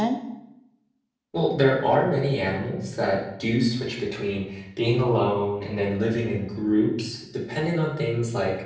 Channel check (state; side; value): identical; both; correlation 1.00